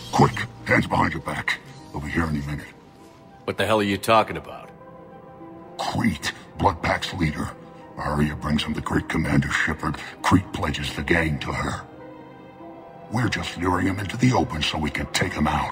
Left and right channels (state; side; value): identical; both; correlation 1.00